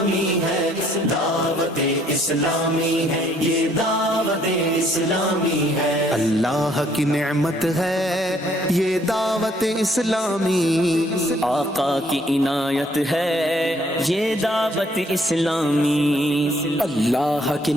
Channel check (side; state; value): both; normal; correlation 0.65